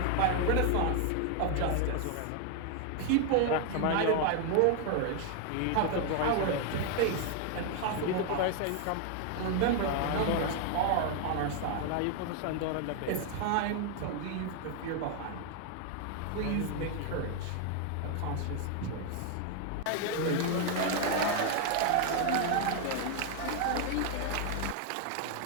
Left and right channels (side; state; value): both; different; correlation 0.00